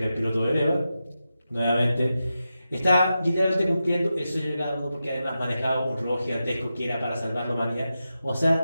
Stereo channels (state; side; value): inverted; both; correlation -0.90